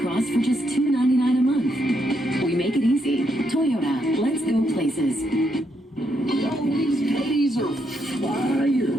Cross for just $2.99 a month. We make it easy. Toyota, let's go places. Yo, these ladies are fire.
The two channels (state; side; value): normal; both; correlation 0.78